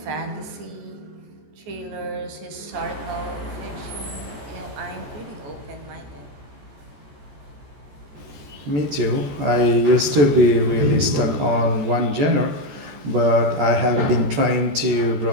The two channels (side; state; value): left; late; 14 ms